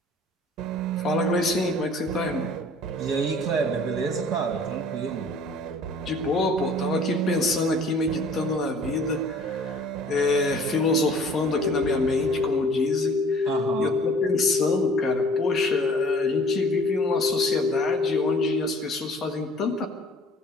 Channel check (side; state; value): both; normal; correlation 0.51